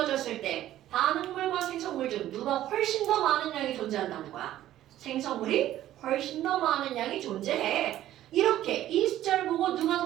때 반응물과 생성물 중 누가 훨씬 더 많은 양이 존재한다는 거야. 생성물이 훨씬 더 많은 양이 존재해. 이렇게 이 숫자를 보고 누가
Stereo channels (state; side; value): quieter; left; 13.2 dB